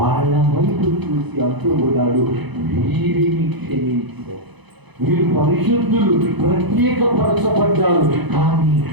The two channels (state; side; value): late; left; 0.99 ms